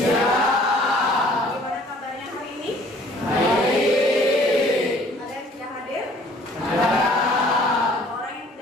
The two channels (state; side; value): normal; both; correlation 0.55